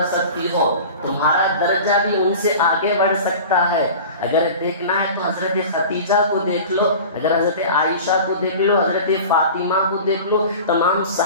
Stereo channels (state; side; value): inverted; both; correlation -0.37